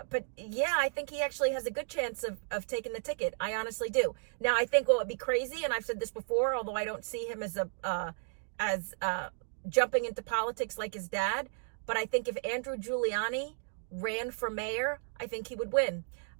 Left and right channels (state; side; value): silent; left; digital silence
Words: but yeah, I think he actually has a good chance of taking the ticket. I honestly do. Now, I think what would be crazy, and I've said this before, although I don't see him as jumping into politics like his dad, but I think if Andrew Giuliani ran for mayor, I think he would win.